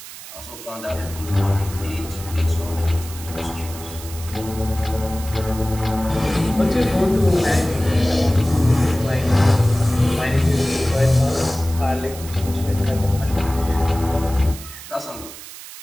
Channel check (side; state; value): right; noise; hiss, 14 dB below the sound